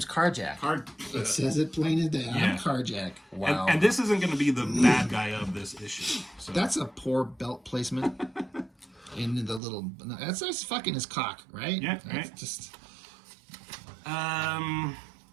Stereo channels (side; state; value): left; drops out; at 9.6 s